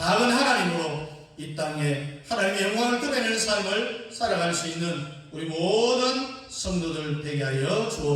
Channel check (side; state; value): both; identical; correlation 1.00